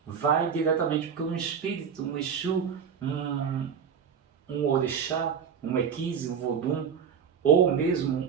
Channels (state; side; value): quieter; left; 7.1 dB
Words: vai diretamente, porque um espírito, um Exu, um, um orixá, um equise, um vodum, ou mesmo